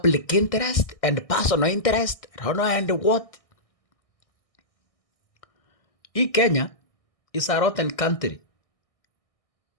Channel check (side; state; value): right; late; 1.6 ms